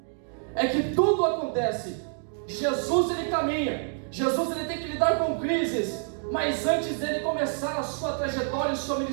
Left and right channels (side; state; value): left; silent; 56 dB below the other